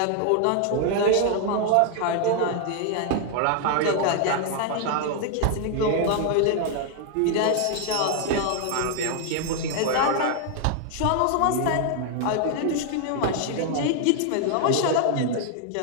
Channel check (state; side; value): different; both; correlation 0.00